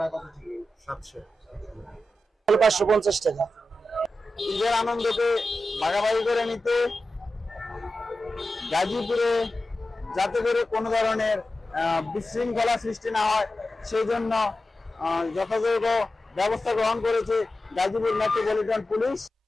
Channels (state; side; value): normal; both; correlation 0.92